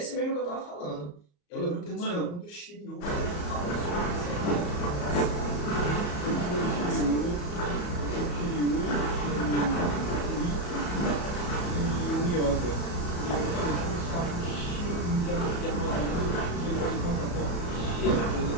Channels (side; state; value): right; late; 34 ms